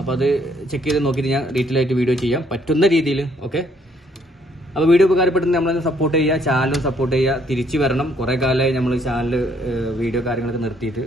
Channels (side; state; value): both; normal; correlation 0.67